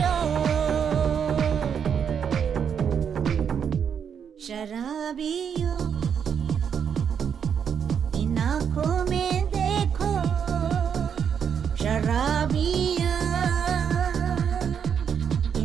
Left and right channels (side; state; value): left; quieter; 7.6 dB